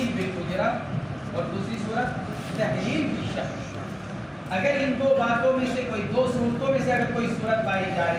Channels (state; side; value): identical; both; correlation 1.00